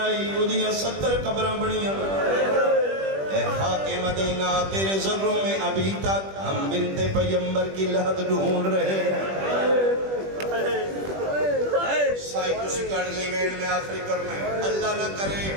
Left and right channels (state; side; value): late; left; 21 ms